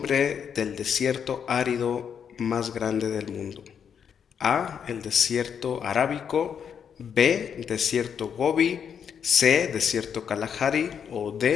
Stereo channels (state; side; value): quieter; right; 7.6 dB